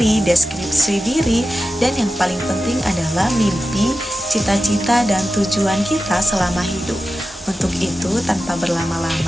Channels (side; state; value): both; normal; correlation 0.93